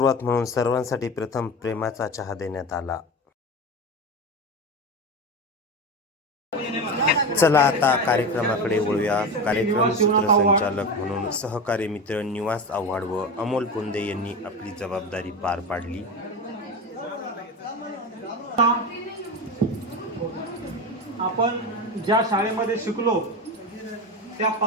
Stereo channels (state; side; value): normal; both; correlation 0.23